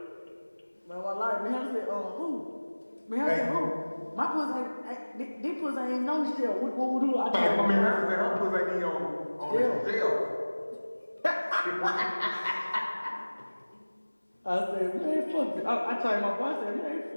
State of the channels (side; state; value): both; inverted; correlation -1.00